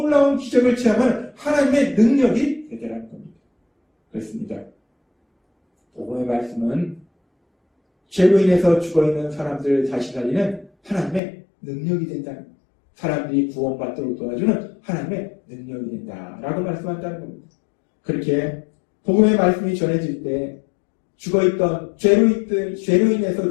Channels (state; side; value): drops out; right; at 11.2 s